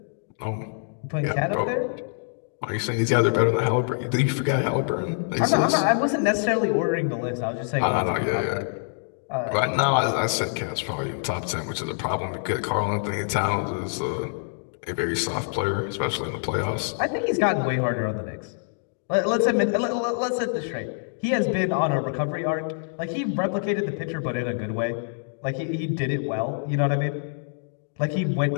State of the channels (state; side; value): silent; right; digital silence